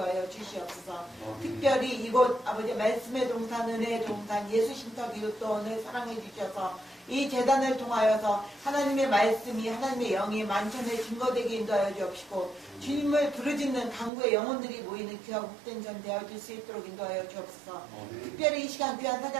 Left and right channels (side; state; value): left; drops out; at 14.1 s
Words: 주시옵소서. 특별히 이곳 아버지 말씀의 동산, 은혜의 동산, 예수 신터 기독도원을 사랑해 주셔서 이 재단을 통하여서 하나님의 말씀이, 하나님의 영이 만천에 증거되게 인도하여 주옵시고, 주님을 부르짖는 강구의 영혼들이 모이는 귀하고 복된 전 되어줄 수 있도록 인도하여 주옵소서. 특별히 이 시간 귀한